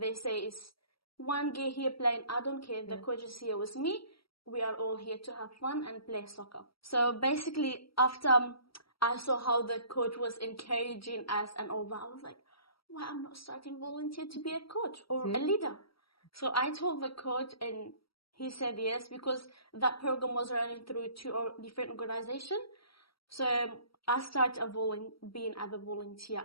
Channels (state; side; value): late; right; 0.75 ms